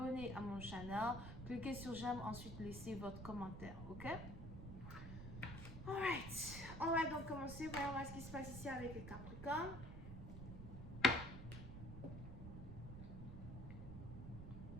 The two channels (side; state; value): right; noise; rumble, 10 dB below the sound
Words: à mon channel. Cliquez sur j'aime, ensuite laissez votre commentaire, ok? Alright, on va donc commencer. Voyons voir ce qui se passe ici avec les Capricornes.